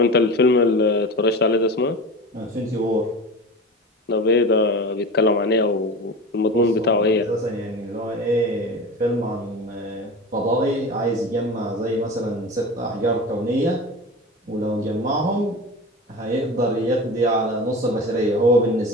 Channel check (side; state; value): both; normal; correlation 0.31